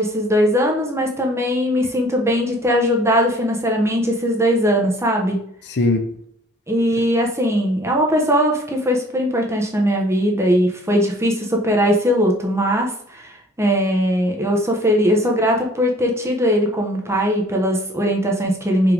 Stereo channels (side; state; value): both; normal; correlation 0.54